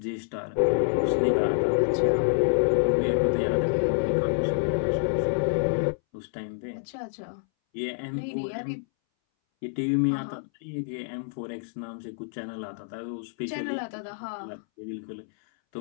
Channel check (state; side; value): silent; right; 60 dB below the other